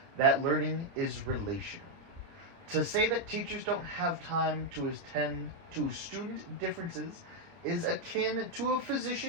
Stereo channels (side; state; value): left; late; 29 ms